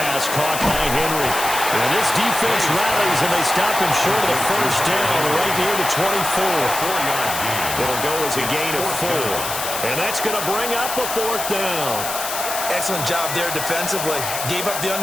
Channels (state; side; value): noise; left; hiss, 5 dB below the sound